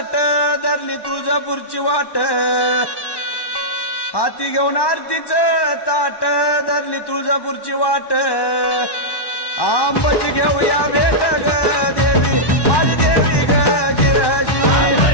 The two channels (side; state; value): right; late; 1.1 ms